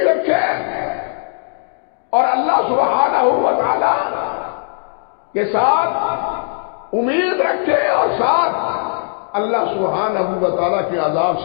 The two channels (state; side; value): silent; right; digital silence